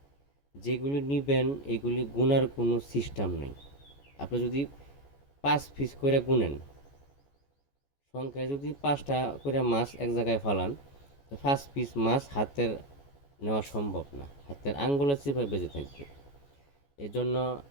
যেগুলি নিবেন এগুলি গুনার কোনো সিস্টেম নেই। আপনি যদি 5 পিস করে গুনেন, সংখ্যায় যদি 5টা করে মাছ এক জায়গায় ফালান, তো 5 পিস মাছ হাতের নেওয়া সম্ভব না, হাতের আঙ্গুলের চিপায় বেঁচে থাকবে। এজন্য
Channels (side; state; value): right; late; 14 ms